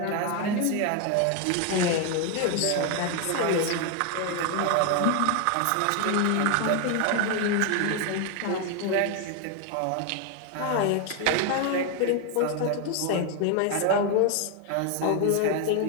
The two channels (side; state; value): both; different; correlation 0.01